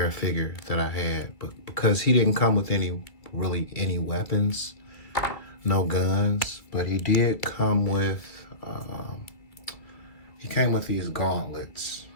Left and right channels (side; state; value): right; late; 2.0 ms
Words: figure that I had, but because he didn't come with any weapons, no guns, but he did come with these gauntlets,